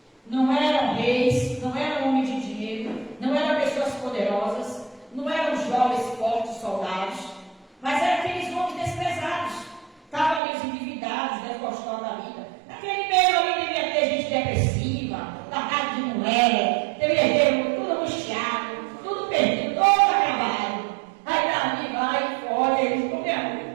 Não eram reis, não eram homens de dinheiro, não eram pessoas poderosas, não eram jovens, fortes, soldados, mas eram aqueles homens desprezados. Estavam ali os endividados, desgostosos da vida. Naquele meio ali devia ter gente depressiva, largada de mulher, devia ter tudo angustiado, tudo perdido, todo acabado. Aí Davi vai e olha, eles comeram.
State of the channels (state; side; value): drops out; left; at 10.4 s